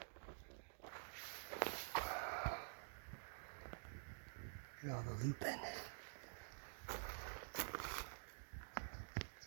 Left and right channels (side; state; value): left; silent; digital silence